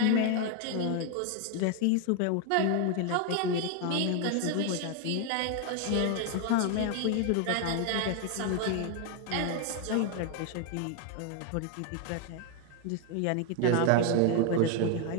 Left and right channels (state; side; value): different; both; correlation 0.01